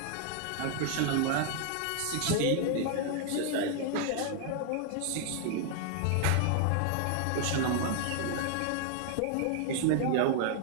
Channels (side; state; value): both; different; correlation 0.00